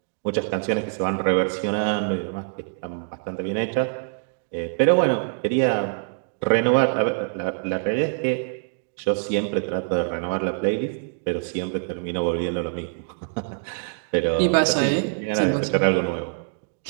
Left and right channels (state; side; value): silent; left; 59 dB below the other